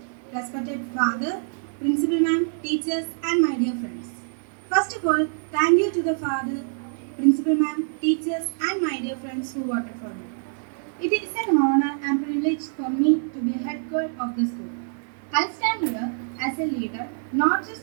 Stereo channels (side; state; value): left; silent; digital silence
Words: Respected father, principal ma'am, teachers and my dear friends. First of all, thank you to the father, principal ma'am, teachers and my dear friends who voted for me. It is an honor and privilege for me to be a head girl of the school. I stand here as a leader, not